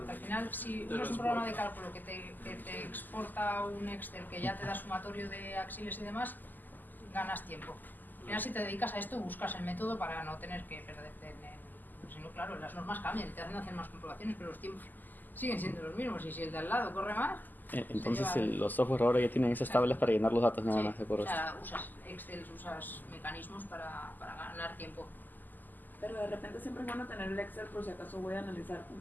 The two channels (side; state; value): right; late; 0.086 ms